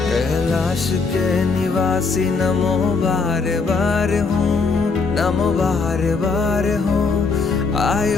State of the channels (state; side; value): quieter; right; 4.5 dB